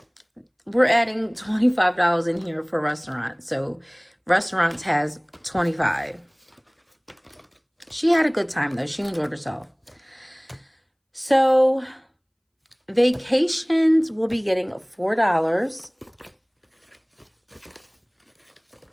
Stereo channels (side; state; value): both; identical; correlation 1.00